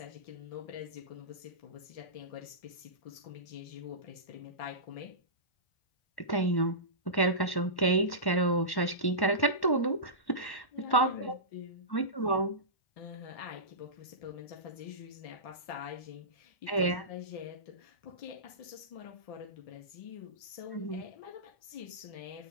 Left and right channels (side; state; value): right; late; 1.1 ms